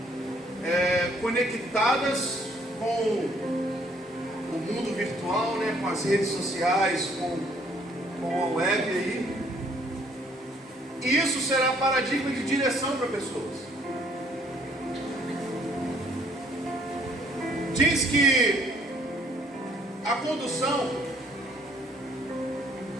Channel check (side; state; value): both; normal; correlation 0.63